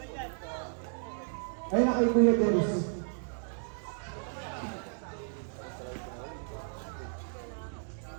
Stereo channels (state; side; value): silent; left; digital silence